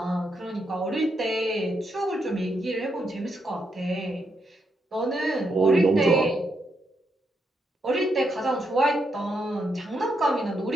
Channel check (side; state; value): both; normal; correlation 0.80